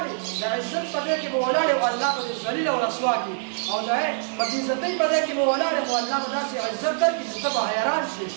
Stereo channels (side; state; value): left; silent; 62 dB below the other